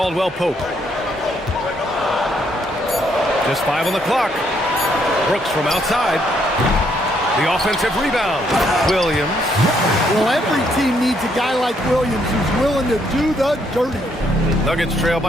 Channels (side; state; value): both; normal; correlation 0.72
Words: Pope. Just 5 on the clock. Brooks from outside. The offensive rebound. Williams. Well, every team needs a guy like Williams who's willing to do the dirty. Nuggets trail